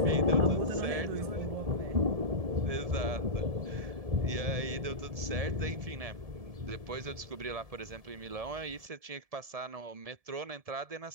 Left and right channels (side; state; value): left; late; 1.7 ms